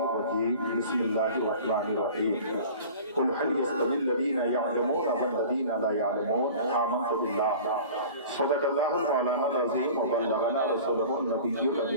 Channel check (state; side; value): inverted; both; correlation -0.41